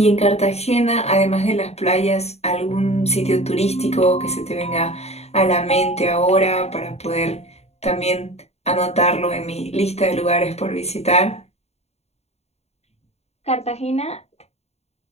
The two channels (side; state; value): right; late; 0.31 ms